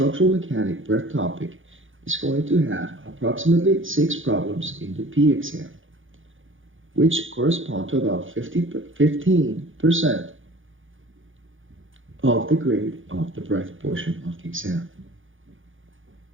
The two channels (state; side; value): late; left; 0.58 ms